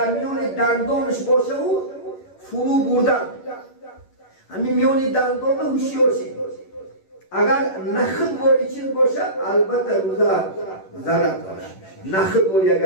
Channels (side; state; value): right; late; 11 ms